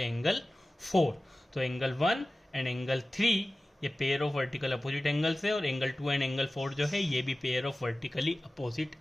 एंगल 4। तो एंगल 1 एंड एंगल 3 ये pair of vertical opposite angles है, और एंगल 2 एंड एंगल 4 जो है ये भी pair of vertically opposite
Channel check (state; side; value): normal; both; correlation 0.96